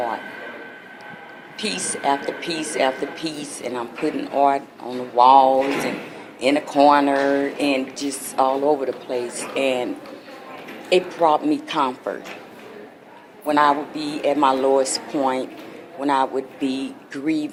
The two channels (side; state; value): both; identical; correlation 1.00